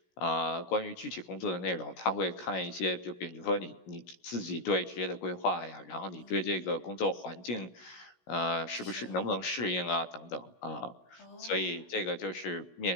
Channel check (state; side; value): late; right; 17 ms